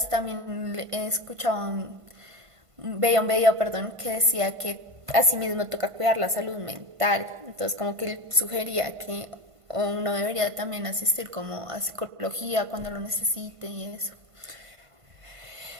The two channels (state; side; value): late; left; 1.5 ms